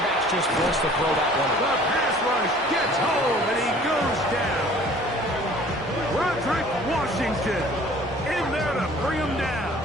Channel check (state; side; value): normal; both; correlation 0.51